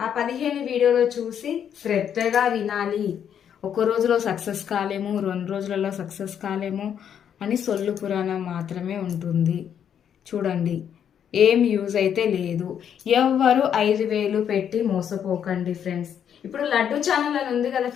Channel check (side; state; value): right; quieter; 8.7 dB